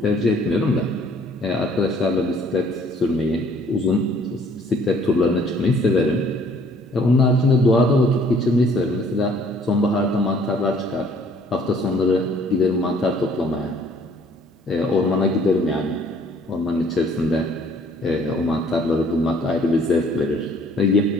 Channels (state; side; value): normal; both; correlation 0.58